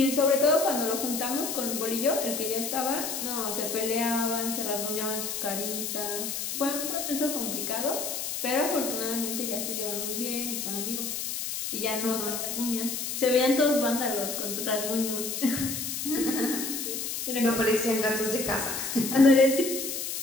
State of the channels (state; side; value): noise; left; hiss, 3 dB below the sound